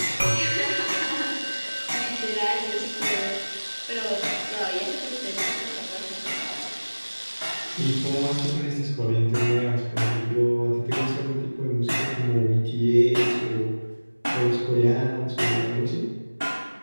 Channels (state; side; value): inverted; both; correlation -1.00